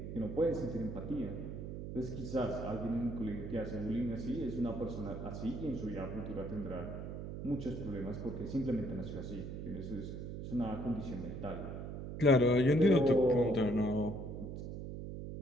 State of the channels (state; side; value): noise; right; hum, 7 dB below the sound